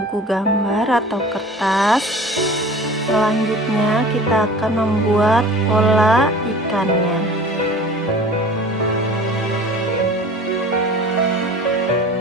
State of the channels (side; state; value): both; normal; correlation 0.42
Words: gambar atau kertas. Selanjutnya kita akan membuat pola ikannya.